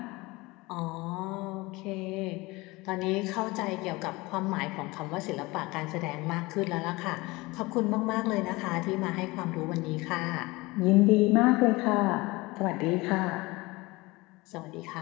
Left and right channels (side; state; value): right; quieter; 22.4 dB